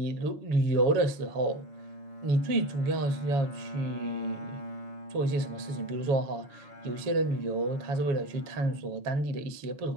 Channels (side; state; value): left; late; 7.2 ms